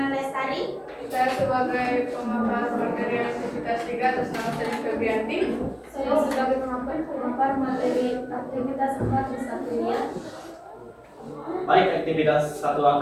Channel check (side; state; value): both; identical; correlation 1.00